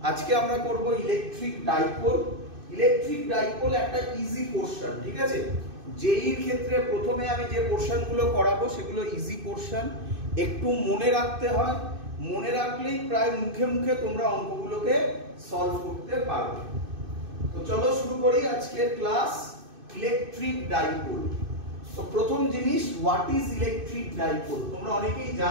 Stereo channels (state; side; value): late; left; 2.6 ms